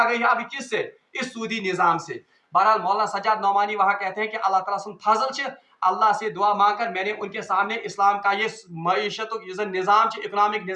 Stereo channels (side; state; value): both; identical; correlation 1.00